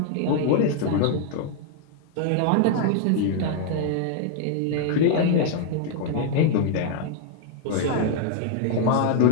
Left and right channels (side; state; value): both; different; correlation 0.00